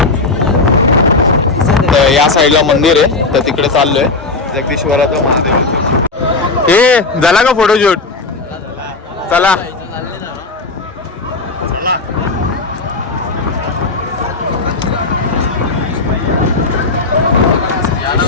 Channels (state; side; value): quieter; right; 3.6 dB